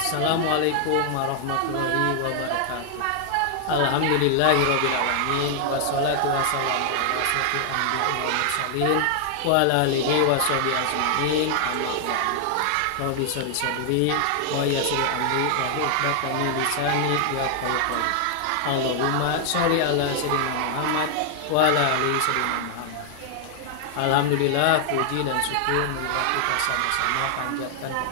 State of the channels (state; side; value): different; both; correlation 0.00